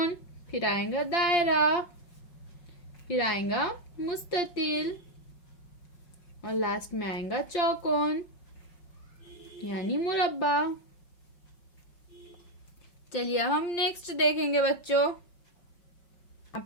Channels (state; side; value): late; right; 5.8 ms